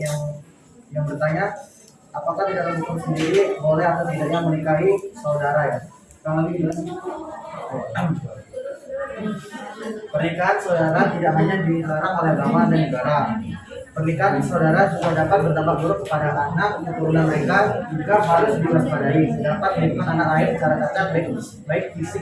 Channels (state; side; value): identical; both; correlation 1.00